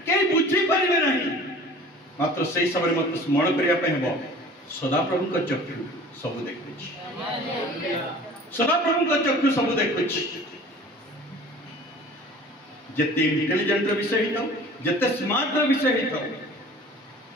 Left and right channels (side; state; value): both; normal; correlation 0.45